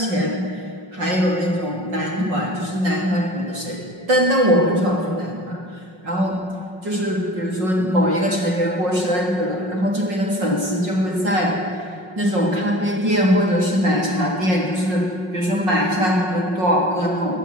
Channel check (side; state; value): left; late; 5.5 ms